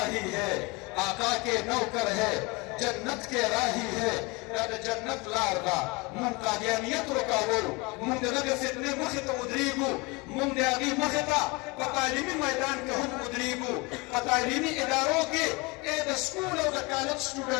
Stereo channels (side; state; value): right; quieter; 26.5 dB